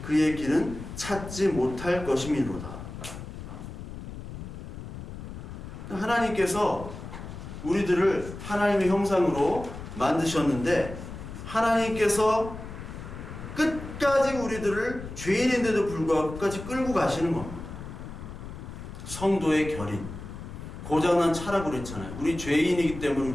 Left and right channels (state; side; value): noise; left; rumble, 10 dB below the sound